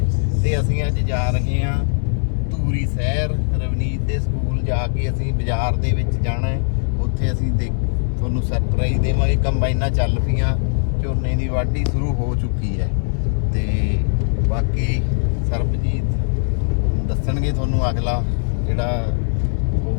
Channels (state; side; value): silent; right; digital silence